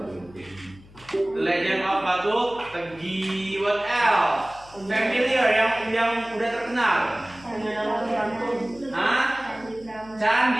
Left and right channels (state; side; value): noise; left; hum, 23 dB below the sound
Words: The Legend of Batu Tegi. What else? Familiar yang udah terkenal. Hah?